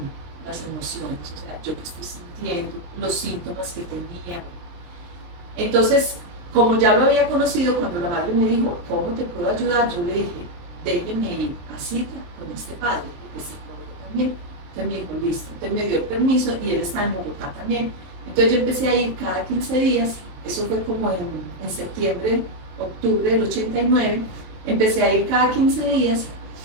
las emociones, o sea, yo que estoy sintiendo, los síntomas que tenía. Entonces, como ya lo había conocido, cuando la madre me dijo, ¿cómo te puedo ayudar? Yo le dije, déjeme ir a cita con este padre, porque es psicólogo también. Entonces me dijo, listo. Entonces me dio el permiso y él está en Bogotá también. Entonces yo empecé a ir cada 15 días eso fue como en septiembre, octubre del 89, empecé a ir cada 15 días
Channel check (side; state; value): left; late; 23 ms